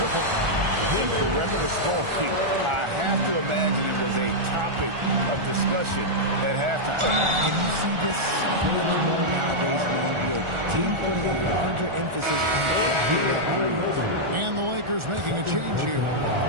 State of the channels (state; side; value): late; left; 1.4 ms